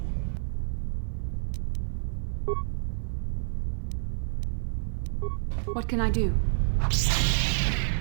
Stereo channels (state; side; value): silent; left; 59 dB below the other